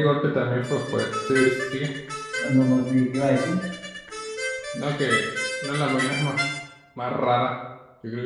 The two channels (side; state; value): both; identical; correlation 1.00